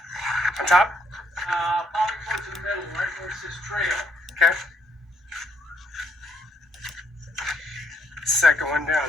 On top? Probably towards the middle, right where it says trail. Okay. Second one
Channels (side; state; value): both; normal; correlation 0.70